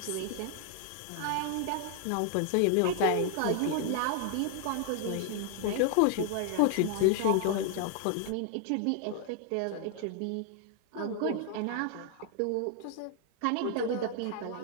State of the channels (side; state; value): both; different; correlation 0.00